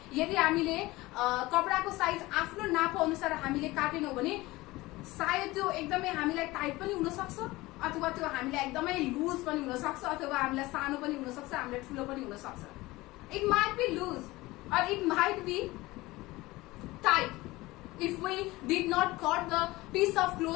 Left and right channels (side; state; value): right; quieter; 19.9 dB